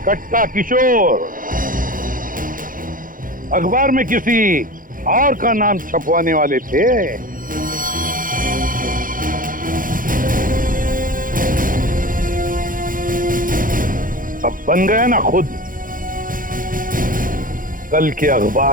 कट्टा किशोर अखबार में किसी और का नाम छपवाने वाले थे। अब बन गया ना खुद। कल के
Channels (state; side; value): late; left; 0.40 ms